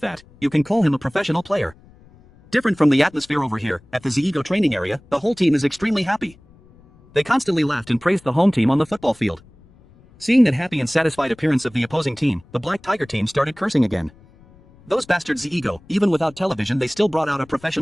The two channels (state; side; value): noise; left; rumble, 26 dB below the sound